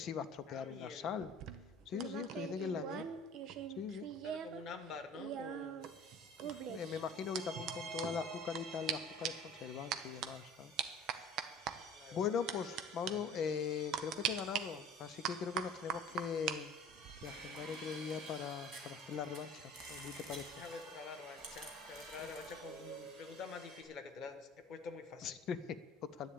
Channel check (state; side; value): normal; both; correlation 0.46